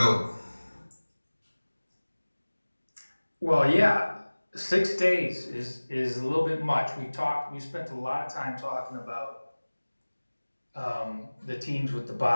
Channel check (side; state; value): both; inverted; correlation -1.00